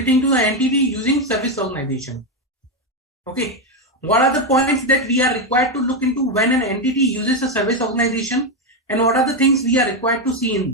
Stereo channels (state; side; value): normal; both; correlation 0.07